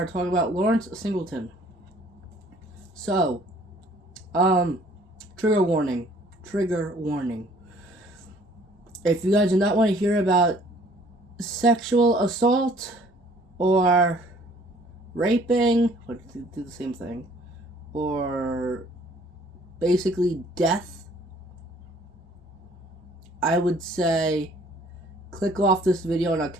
talking about Lawrence Singleton. So, trigger warning. Trigger warning. If you guys do not want to hear about sexual assault or raping, or do the same thing, or basically death, I would say click off this video and I'll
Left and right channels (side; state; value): both; normal; correlation 0.57